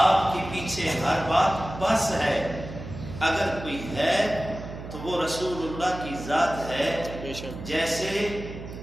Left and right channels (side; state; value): right; noise; hum, 11 dB below the sound